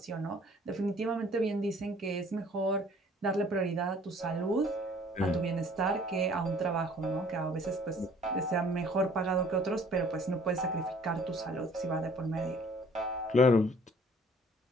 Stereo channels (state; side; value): normal; both; correlation 0.55